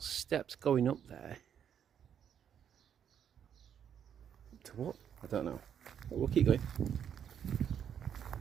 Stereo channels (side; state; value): left; quieter; 8.7 dB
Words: steps going up there. To what? I don't know. But we'll keep going.